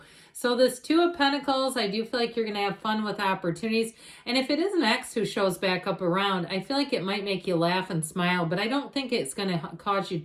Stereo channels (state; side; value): identical; both; correlation 1.00